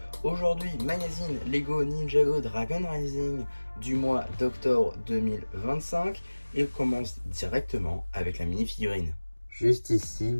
Aujourd'hui, magazine Lego Ninjago Dragon Rising du mois d'octobre 2025. Et on commence directement avec la mini-figurine. Juste ici,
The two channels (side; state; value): both; inverted; correlation -1.00